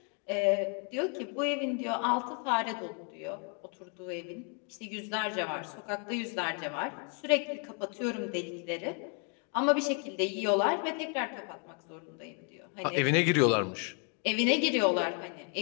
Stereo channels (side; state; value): right; quieter; 39.7 dB